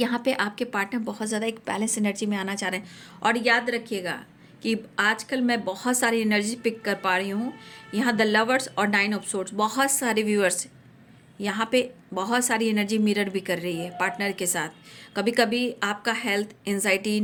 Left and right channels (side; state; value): both; identical; correlation 1.00